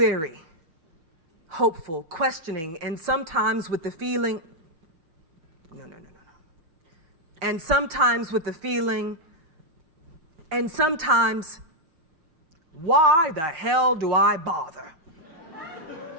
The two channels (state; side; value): late; left; 6.2 ms